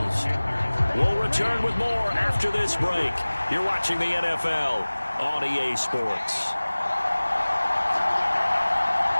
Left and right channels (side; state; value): both; inverted; correlation -1.00